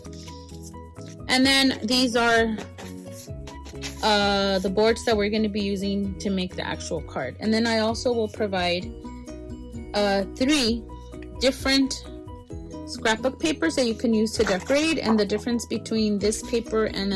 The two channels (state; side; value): identical; both; correlation 1.00